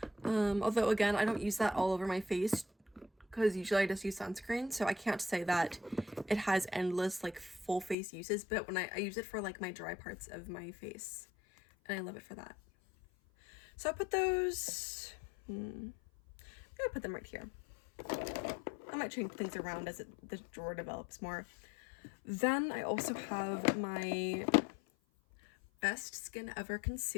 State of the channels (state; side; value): drops out; right; at 8.0 s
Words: Although again, I don't use that all over my face because usually I just use sunscreen, so I can't say that it has endless like full face uses, but when I use it for like my dry parts of my face, and I love it for that. So I put those, I'm gonna put them right here. I might change things around as the drawer develops more. Then I also have my Best Skin Ever